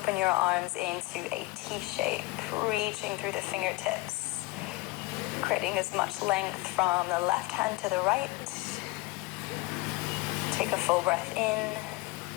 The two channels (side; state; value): right; quieter; 22.5 dB